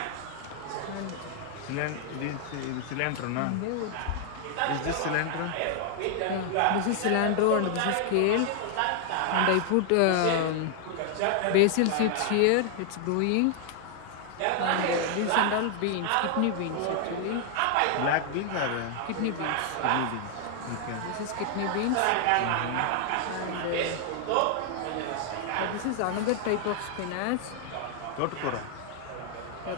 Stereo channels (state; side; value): different; both; correlation 0.00